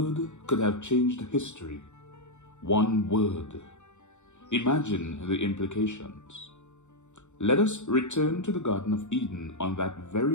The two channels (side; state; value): right; late; 0.84 ms